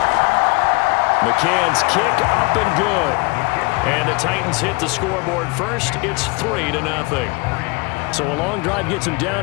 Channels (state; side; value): quieter; right; 26.9 dB